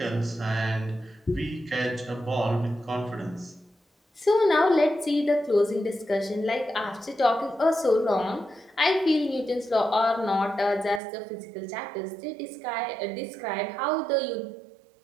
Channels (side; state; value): left; drops out; at 11.0 s